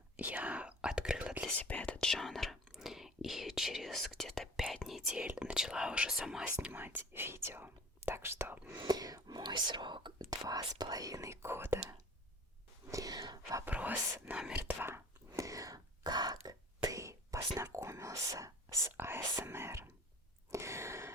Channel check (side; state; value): both; normal; correlation 0.44